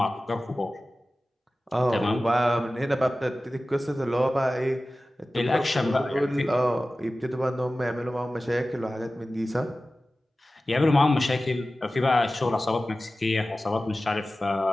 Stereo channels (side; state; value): both; normal; correlation 0.96